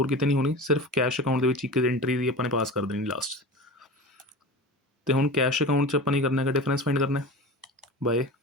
ਕਿਤੇ ਨਹੀਂ ਹੋਣੀ, ਸਿਰਫ ਕੈਸ਼ ਅਕਾਊਂਟ ਦੇ ਵਿੱਚ ਇੱਕ ਐਂਟਰੀ ਦੀ ਆਪਾਂ ਨੇ ਪਾਸ ਕਰ ਦੇਣੀ ਲਾਸਟ। ਤੇ ਹੁਣ ਕੈਸ਼ ਅਕਾਊਂਟ 'ਚ ਆਪਾਂ ਨਹੀਂ ਕਰਨਾ ਹੈਗਾ, ਡਿਫਰੈਂਸ ਫਾਈਂਡ ਕਰਨਾ ਬਾਏ,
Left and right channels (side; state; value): both; normal; correlation 0.32